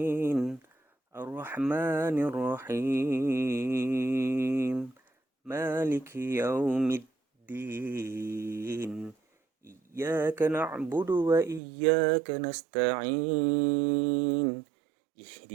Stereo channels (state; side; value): drops out; left; at 11.6 s